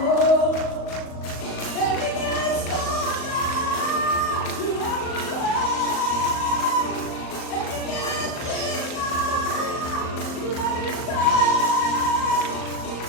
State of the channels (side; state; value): right; late; 38 ms